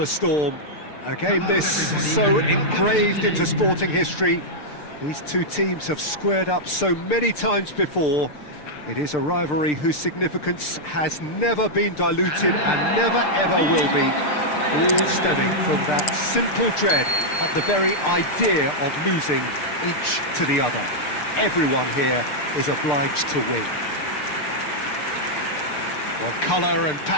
storm. A game this so engraved into sporting history. These two teams have squared up so many times before. It is a rivalry whose significance has never been diluted and never ever will be. All stemming from that simple dread at the very idea of losing each to the other. Everyone here is obliged to win. Well, colour and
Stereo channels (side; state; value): right; late; 6.7 ms